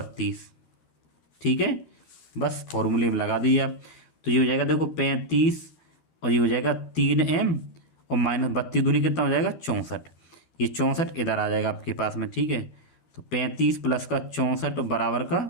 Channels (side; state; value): right; late; 13 ms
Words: ठीक है, बस फॉर्मूले में लगा दीजिए आप, तो ये हो जाएगा देखो 35 और ये हो जाएगा 3m और -32 दूनी कितना हो जाएगा, 64। ये 64 इधर आ जाएगा आपके पास में, ठीक है। तो 35 प्लस का 64 बराबर का